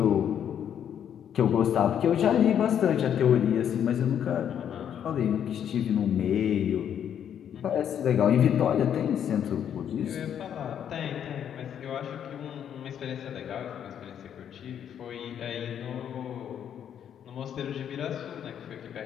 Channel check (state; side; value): quieter; right; 9.1 dB